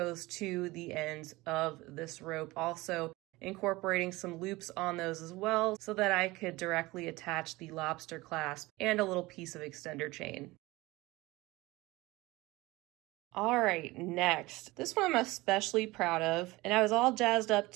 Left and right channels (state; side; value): quieter; left; 20.8 dB